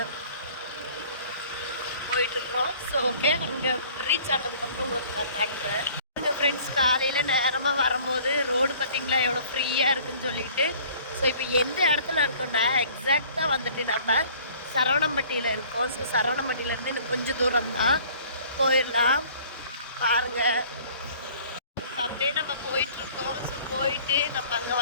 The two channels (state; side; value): inverted; both; correlation -0.52